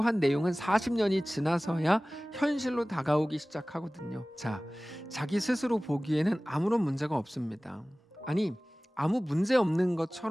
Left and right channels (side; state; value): both; normal; correlation 0.98